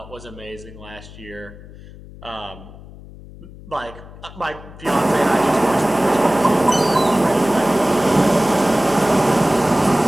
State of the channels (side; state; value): left; noise; hum, 18 dB below the sound